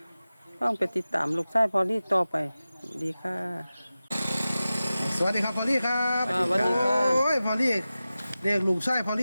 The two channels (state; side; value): inverted; both; correlation -0.95